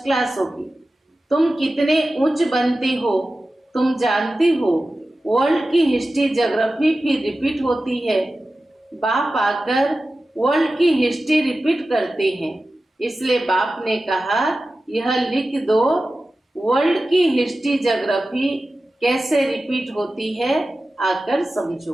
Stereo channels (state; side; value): normal; both; correlation 0.94